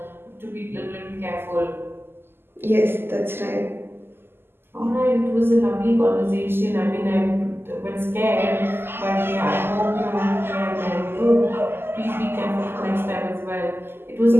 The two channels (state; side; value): late; left; 0.11 ms